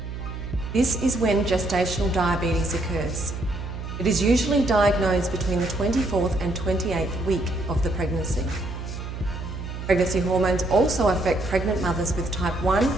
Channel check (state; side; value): noise; right; hum, 8 dB below the sound